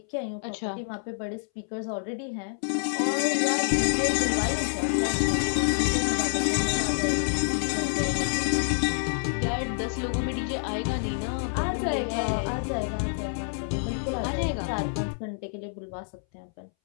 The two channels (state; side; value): silent; right; 60 dB below the other